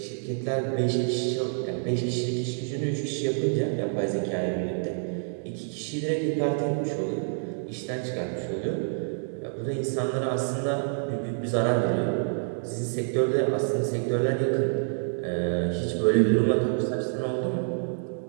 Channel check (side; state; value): left; silent; digital silence